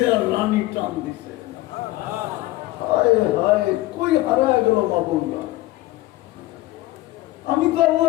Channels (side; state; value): right; quieter; 17.6 dB